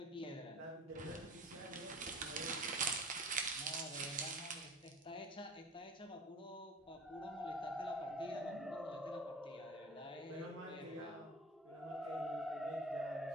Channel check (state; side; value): normal; both; correlation 0.39